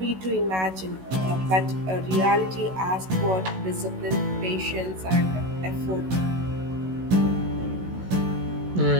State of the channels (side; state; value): left; late; 16 ms